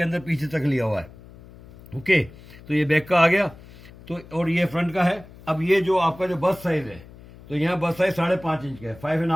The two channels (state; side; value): noise; left; hum, 20 dB below the sound